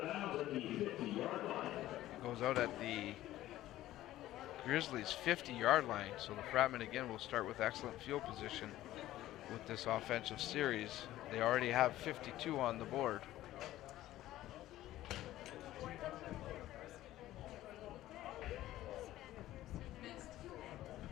It goes out at the Grizzlies' 50-yard line. So the Fratmen again will start with excellent field position with this offensive series. They already have 52 on the board.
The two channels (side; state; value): right; quieter; 14.7 dB